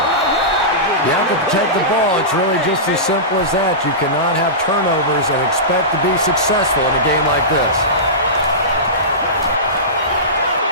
You have to protect the ball. It's really just as simple as that. You cannot have turnovers and expect to be successful in a game like this.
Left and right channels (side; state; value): both; normal; correlation -0.19